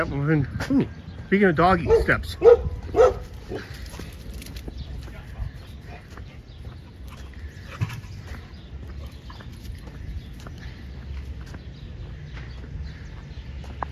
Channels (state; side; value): identical; both; correlation 1.00